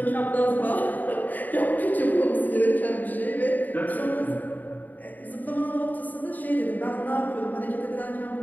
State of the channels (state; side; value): late; right; 0.084 ms